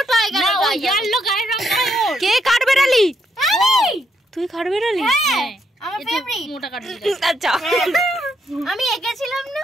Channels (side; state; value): both; normal; correlation 0.77